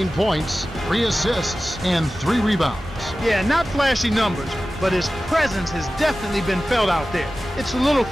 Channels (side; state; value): both; normal; correlation 0.95